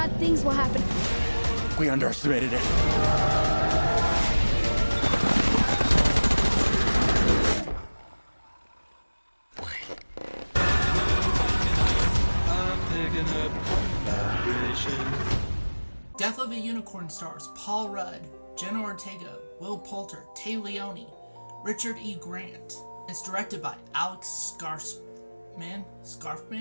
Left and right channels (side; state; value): both; inverted; correlation -1.00